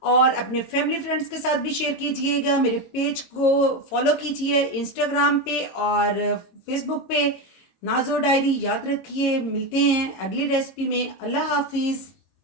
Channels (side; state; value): right; late; 22 ms